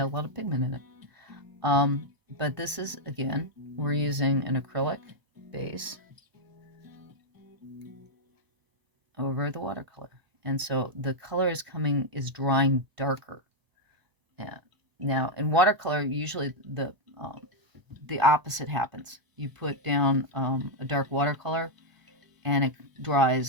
a lot of pigment in it. But this is, again, we're using an acrylic base over the watercolor, and so the color is drying darker. Yeah. Now in watercolor, usually the opposite happens. You put down a dark watercolor, and it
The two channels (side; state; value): left; late; 1.0 ms